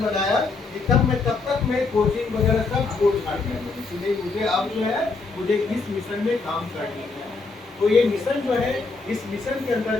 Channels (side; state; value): right; quieter; 4.1 dB